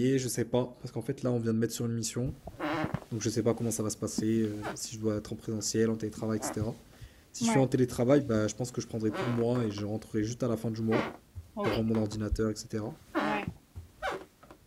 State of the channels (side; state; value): both; identical; correlation 1.00